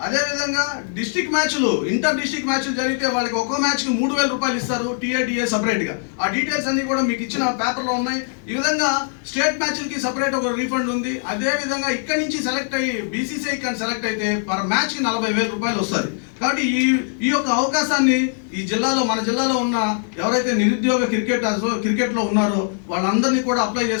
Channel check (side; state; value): right; silent; 57 dB below the other